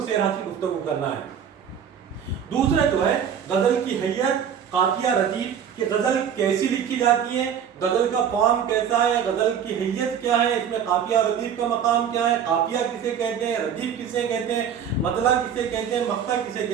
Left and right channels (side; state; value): left; quieter; 8.1 dB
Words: سیر حاصل گفتگو کرنا ہے۔ دوسرا جو ہے غزل کی حیت، قافیہ ردیف کہ غزل کیسی لکھی جاتی ہے، غزل کا فارم کیسا ہے، غزل کی حیت کیا ہے، اس میں قافیہ ردیف کا مقام کیا ہے، قافیہ کسے کہتے ہیں، ردیف کسے کہتے ہیں، مطلع کسے کہتے ہیں، مقطع کسے